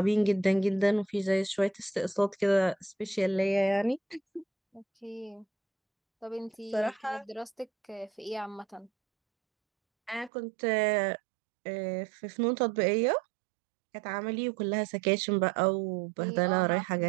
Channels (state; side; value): drops out; left; at 10.3 s